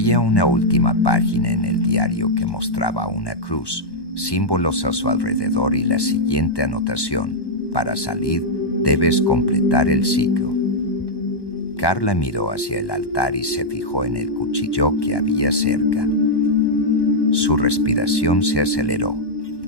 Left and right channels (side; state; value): right; late; 1.1 ms